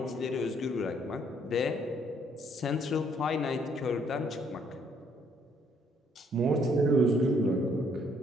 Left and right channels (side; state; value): both; normal; correlation 0.66